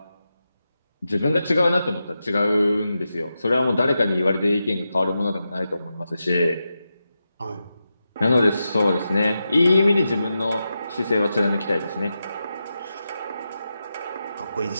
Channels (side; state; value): both; inverted; correlation -0.89